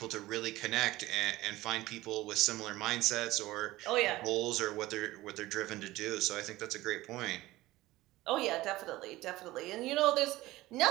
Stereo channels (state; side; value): quieter; left; 17.8 dB